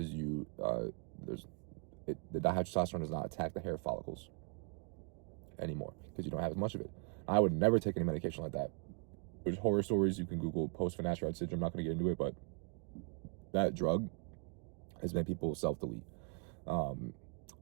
you the dihydrotestosterone does not attack the hair follicles anymore because you don't have as much of it. I would never take any medication like that. There's horror stories you can Google post finasteride syndrome. I'm not going to get into it, but that drug has made people self-delete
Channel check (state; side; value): quieter; left; 38.2 dB